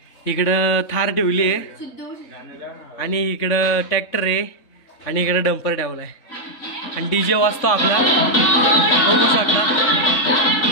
इकडं थार ठेवली आहे आणि इकडं ट्रॅक्टर आहे आणि इकडं डंपर ठेवलाय आणि डीजे वाजतो आपला, बघू शकता।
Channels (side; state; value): right; late; 3.6 ms